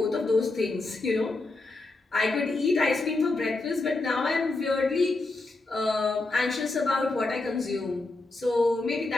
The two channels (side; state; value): right; quieter; 3.2 dB